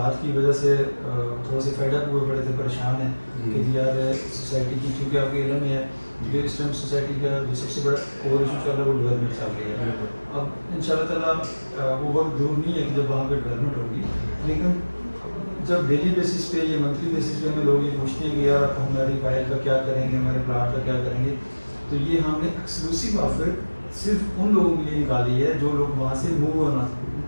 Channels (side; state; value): both; inverted; correlation -1.00